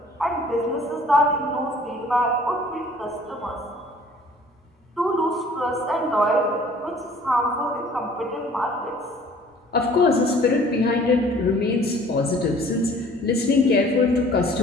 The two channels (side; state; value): both; normal; correlation 0.53